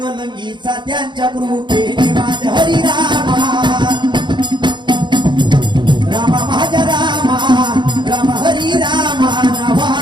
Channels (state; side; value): late; left; 0.22 ms